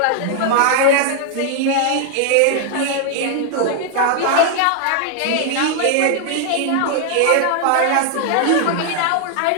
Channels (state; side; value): different; both; correlation 0.00